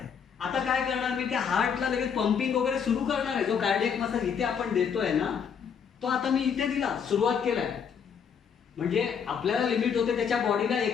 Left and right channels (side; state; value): right; quieter; 7.0 dB